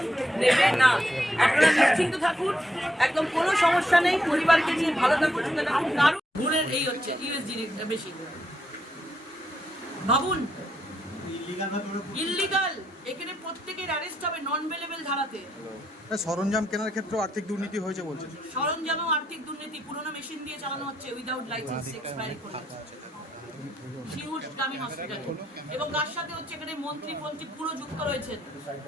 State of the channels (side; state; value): both; normal; correlation 0.78